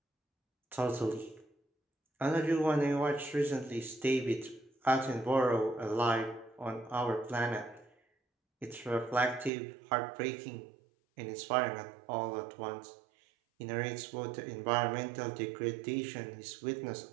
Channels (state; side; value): drops out; left; at 9.5 s